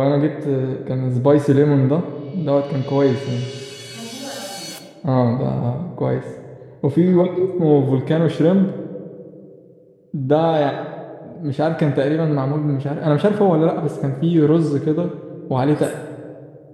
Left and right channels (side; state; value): both; identical; correlation 1.00